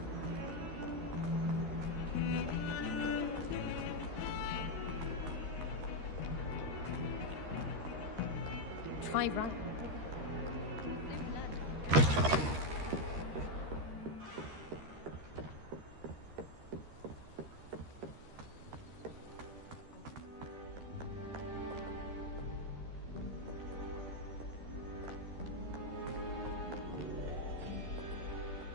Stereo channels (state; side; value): late; left; 13 ms